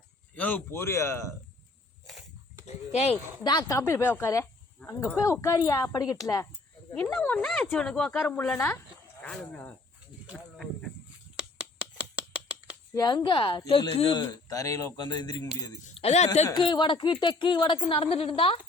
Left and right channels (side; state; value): right; quieter; 3.2 dB